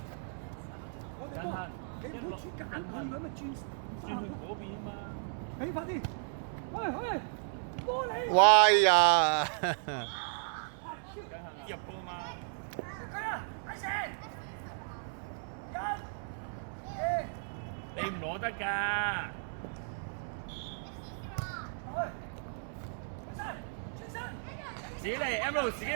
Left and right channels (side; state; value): left; silent; 54 dB below the other